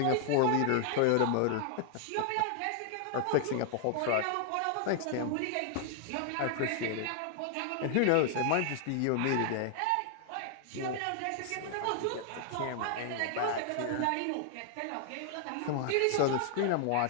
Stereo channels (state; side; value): different; both; correlation 0.00